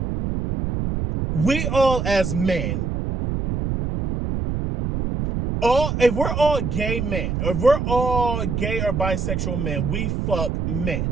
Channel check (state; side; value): noise; right; rumble, 1 dB below the sound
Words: we all as men, if we're all gay men, or if we're all gay or bisexual men, we fuck